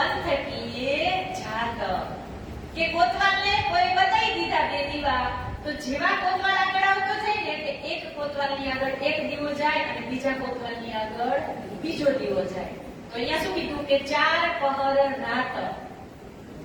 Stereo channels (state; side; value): identical; both; correlation 1.00